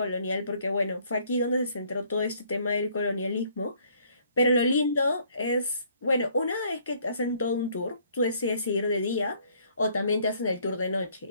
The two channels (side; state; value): both; inverted; correlation -0.63